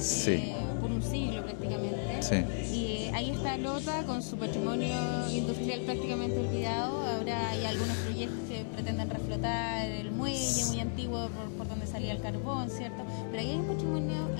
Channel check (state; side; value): silent; right; digital silence